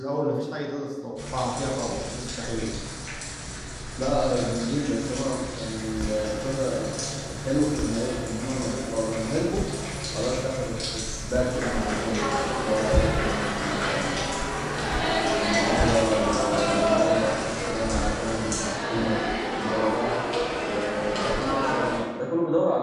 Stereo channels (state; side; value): identical; both; correlation 1.00